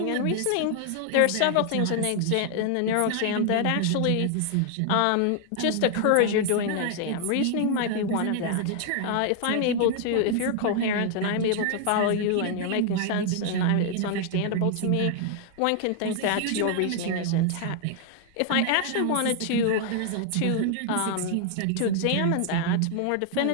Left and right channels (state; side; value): different; both; correlation 0.00